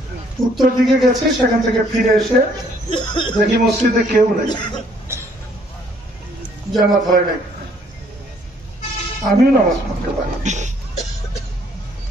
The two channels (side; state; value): both; normal; correlation 0.64